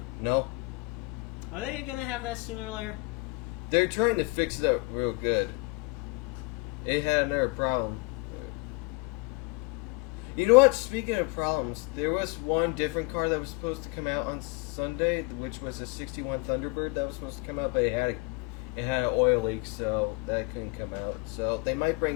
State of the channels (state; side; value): quieter; right; 26.8 dB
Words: No. Are they going to have that sooner or later? They're trying to fix it up real good. It had another problem. You know what? Speaking of problems, there was one different car that was supposed to come out on Sunday, which was a 61 Thunderbird that was supposed to come out, but it had an oil leak, so that couldn't come out. So they might